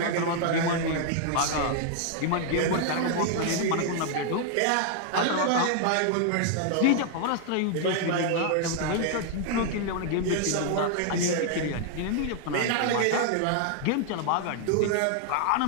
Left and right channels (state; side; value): different; both; correlation 0.00